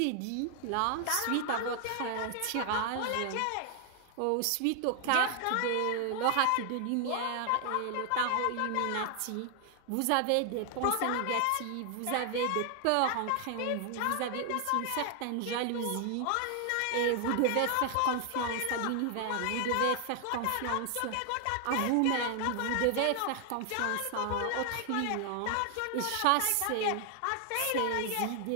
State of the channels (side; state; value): both; different; correlation 0.00